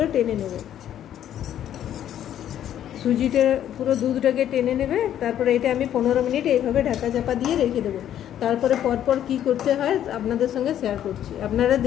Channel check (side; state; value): right; quieter; 10.8 dB